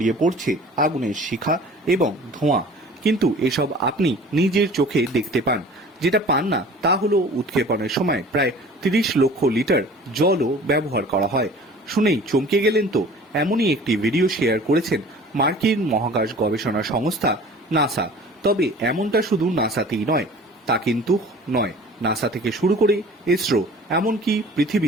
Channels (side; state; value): both; normal; correlation 0.45